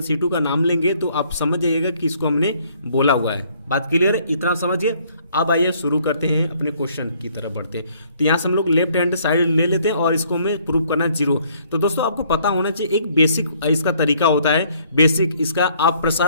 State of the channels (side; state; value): both; inverted; correlation -0.64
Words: C2 का नाम लेंगे तो आप समझ जाइएगा कि इसको हमने बोला हुआ है। बात क्लियर है, इतना समझिए। अब आइए शुरू करते हैं, अपने क्वेश्चन की तरफ बढ़ते हैं। तो यहाँ से हम लोग लेफ्ट हैंड साइड ले लेते हैं और इसको हमें प्रूव करना 0। तो दोस्तों आपको पता होना चाहिए एक बेसिक इसका तरीका होता है, बेसिक इसका आप